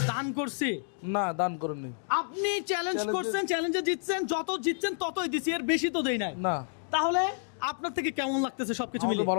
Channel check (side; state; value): right; silent; digital silence